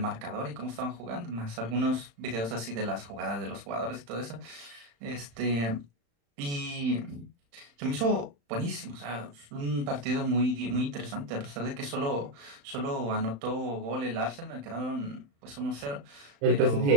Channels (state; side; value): late; left; 35 ms